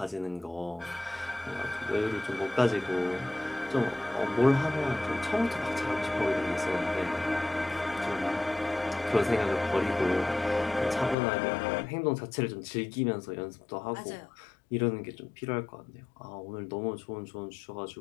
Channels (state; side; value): drops out; right; at 11.2 s